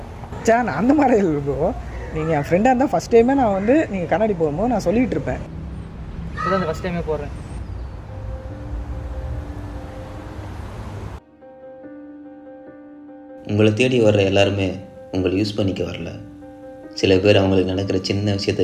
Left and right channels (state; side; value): identical; both; correlation 1.00